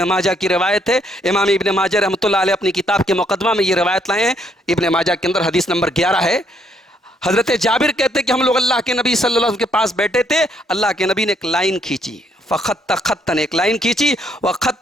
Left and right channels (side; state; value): both; normal; correlation 0.70